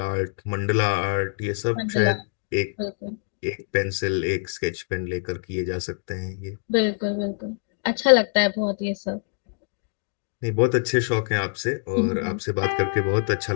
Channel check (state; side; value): silent; right; digital silence